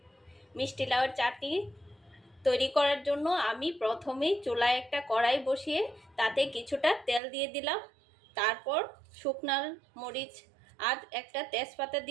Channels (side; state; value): left; drops out; at 7.2 s